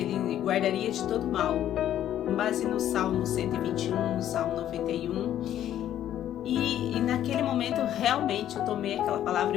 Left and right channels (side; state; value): right; quieter; 11.5 dB